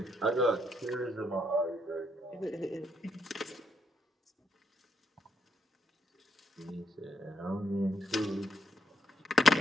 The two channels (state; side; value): normal; both; correlation 0.74